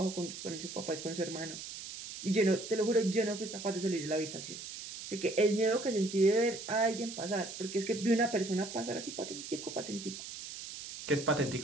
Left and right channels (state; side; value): noise; right; hiss, 10 dB below the sound